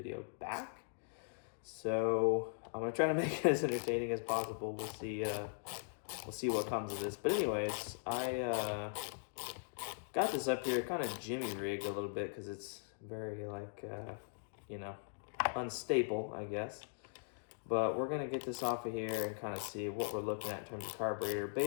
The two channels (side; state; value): right; silent; digital silence